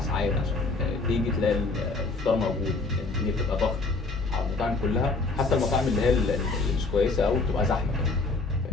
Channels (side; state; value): right; quieter; 3.6 dB